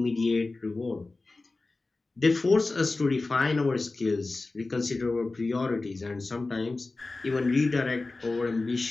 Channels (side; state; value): right; quieter; 3.4 dB